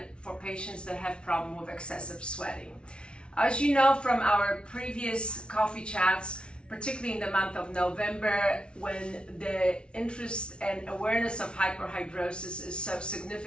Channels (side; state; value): right; late; 0.057 ms